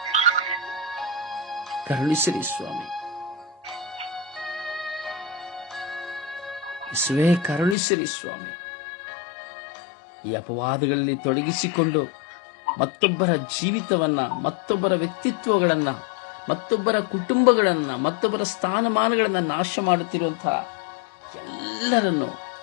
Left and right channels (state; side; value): drops out; right; at 7.8 s